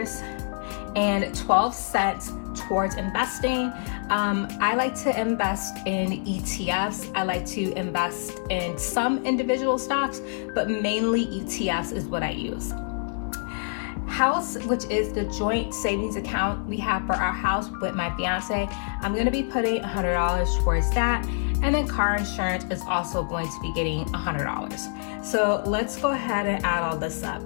towards investing. I like to invest in ETFs. I like to invest in some individual stocks, but mainly ETFs is what I use. House, which is the joint savings account we have for our house with my fiance, I'm going to be putting $100 towards that. And then car insurance is also going to be getting $100. So let's go ahead and add all this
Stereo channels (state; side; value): silent; right; 61 dB below the other